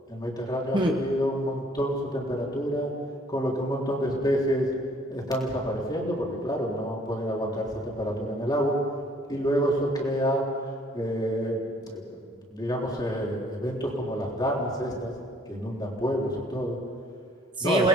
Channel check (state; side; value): normal; both; correlation 0.60